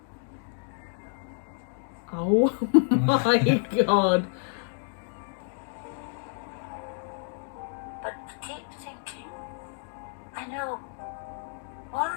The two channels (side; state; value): right; silent; 57 dB below the other